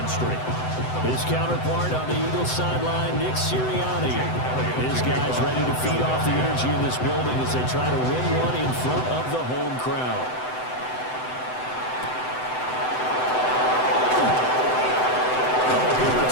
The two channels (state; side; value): late; right; 7.9 ms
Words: streak. His counterpart on the Eagles sideline, Nick Sirianni. His guys ready to feed off the energy in this building as they try to win one in front of the home crowd. Good